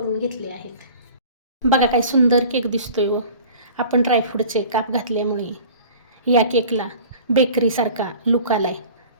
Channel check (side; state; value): both; inverted; correlation -0.43